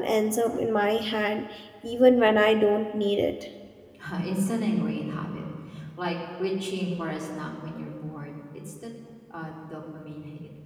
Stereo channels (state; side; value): identical; both; correlation 1.00